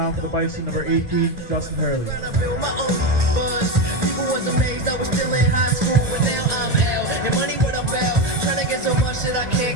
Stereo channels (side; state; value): both; normal; correlation 0.14